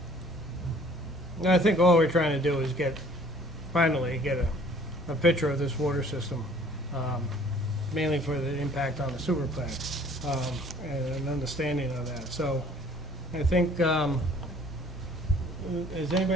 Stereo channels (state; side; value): normal; both; correlation 0.55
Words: And I think all we're trying to do is finally get a picture of this water system, mainly for the impact on the sewer plant, and an understanding of that. So I think, does